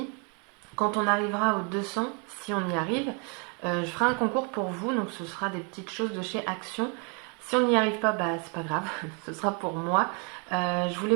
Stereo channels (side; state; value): left; quieter; 35.8 dB